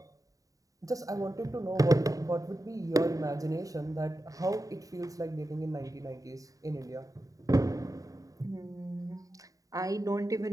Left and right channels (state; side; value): late; left; 0.16 ms